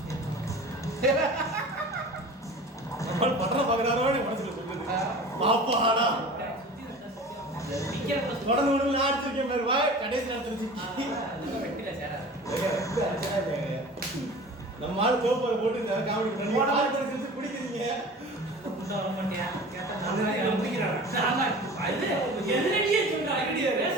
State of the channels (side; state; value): both; normal; correlation 0.39